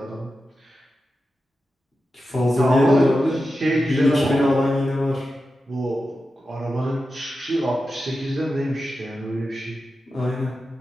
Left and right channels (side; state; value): both; normal; correlation 0.91